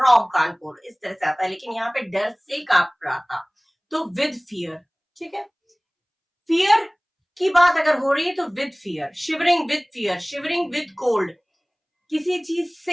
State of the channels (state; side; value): identical; both; correlation 1.00